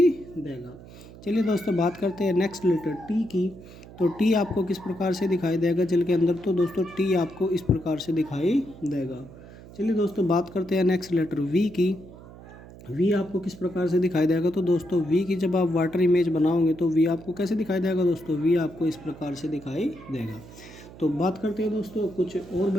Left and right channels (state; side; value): noise; right; hum, 18 dB below the sound